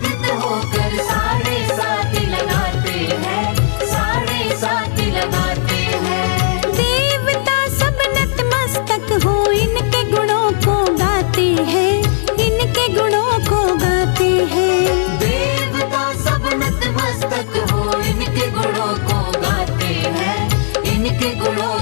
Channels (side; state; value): right; silent; digital silence